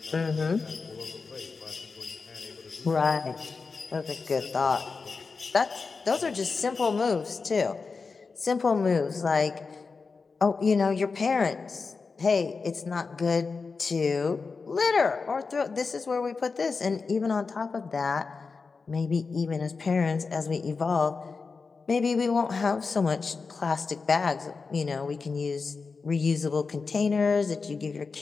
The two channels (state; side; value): quieter; right; 4.6 dB